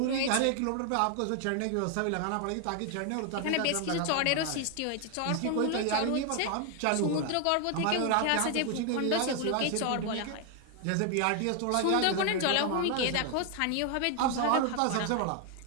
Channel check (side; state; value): both; different; correlation 0.00